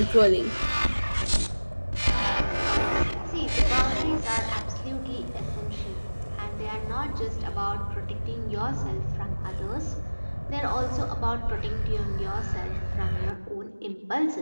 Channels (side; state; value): both; inverted; correlation -1.00